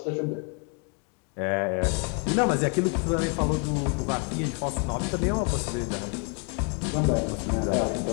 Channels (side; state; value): right; quieter; 38.4 dB